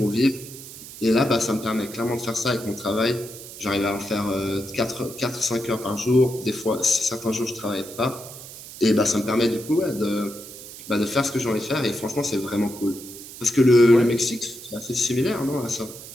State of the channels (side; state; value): right; noise; hiss, 14 dB below the sound